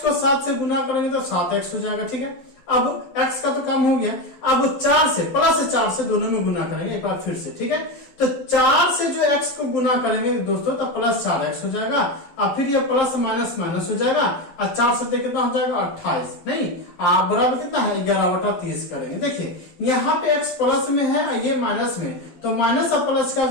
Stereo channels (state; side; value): late; right; 12 ms